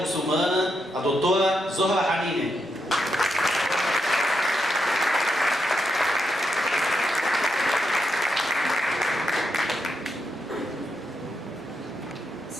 muçulmana, a doutora Zohra Hanine.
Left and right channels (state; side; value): normal; both; correlation 0.83